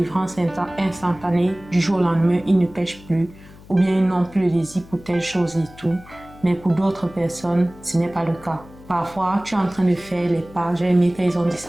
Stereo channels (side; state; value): left; noise; hum, 21 dB below the sound